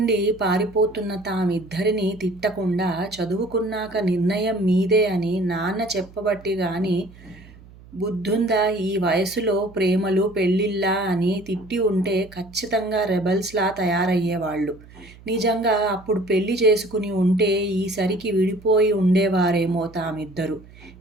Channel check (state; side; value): noise; right; hum, 22 dB below the sound